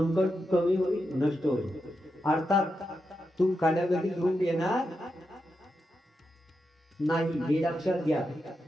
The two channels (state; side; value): normal; both; correlation 0.87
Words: कमी होईल, नष्ट होईल. अर्थात तू काड्यागती घेऊन येणार नाही, हे लक्षात घ्या.